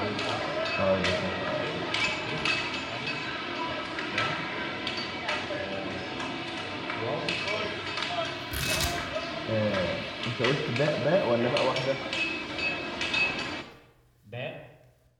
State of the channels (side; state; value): both; identical; correlation 1.00